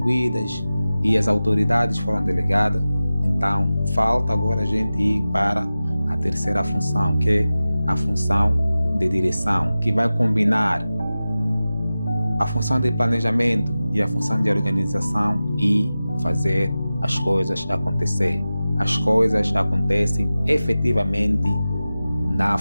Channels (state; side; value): inverted; both; correlation -0.95